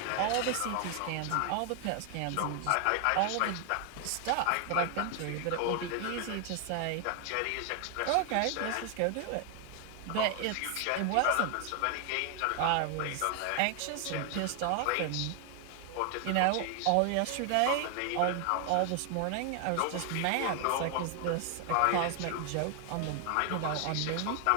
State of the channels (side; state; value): both; different; correlation 0.00